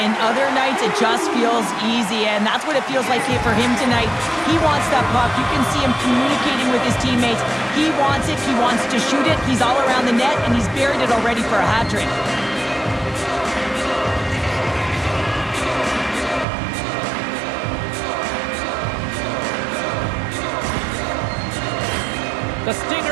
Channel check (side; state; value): left; drops out; at 16.4 s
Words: and other nights it just feels easy, and that's what it feels like here for him tonight. He wants that puck. You can see him communicating with his teammates. He wants it. He wants to shoot it. He's all around the net, and he's buried it already for a hat trick. The